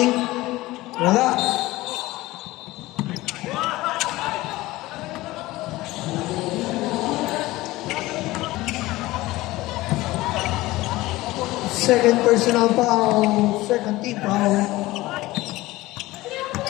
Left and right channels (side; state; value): right; quieter; 18.6 dB